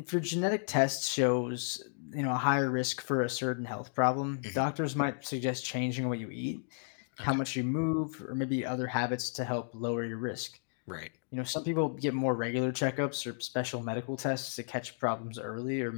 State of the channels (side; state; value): right; silent; digital silence